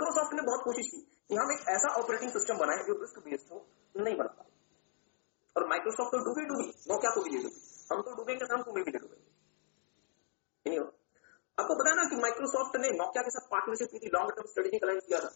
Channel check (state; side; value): silent; right; digital silence